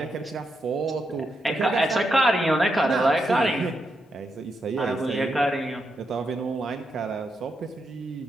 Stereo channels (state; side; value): normal; both; correlation 0.83